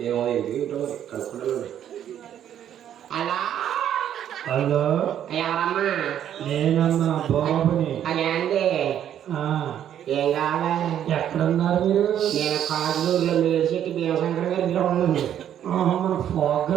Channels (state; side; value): quieter; left; 10.2 dB